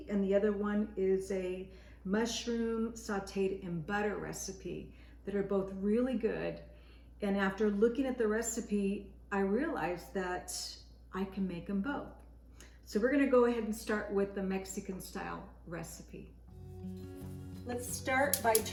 and the other one is a mushroom sauteed in butter recipe that are both really good. And after looking at the recipe, I realized that I can make them both. So we're gonna go ahead and start with the Mexican style recipe. Let's start by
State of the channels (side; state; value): both; identical; correlation 1.00